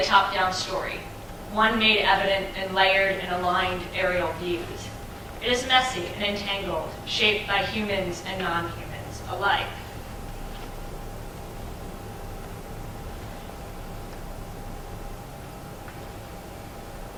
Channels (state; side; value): identical; both; correlation 1.00